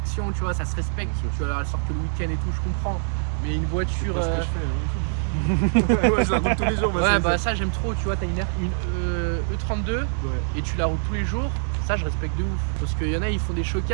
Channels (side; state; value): left; silent; digital silence